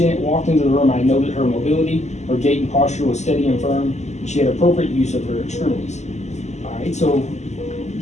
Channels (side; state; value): right; late; 0.33 ms